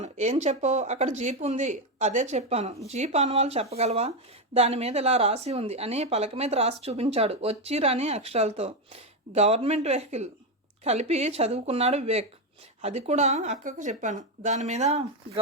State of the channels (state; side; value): normal; both; correlation 0.08